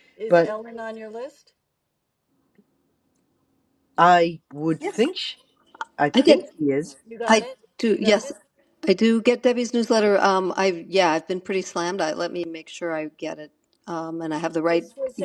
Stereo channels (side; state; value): both; identical; correlation 1.00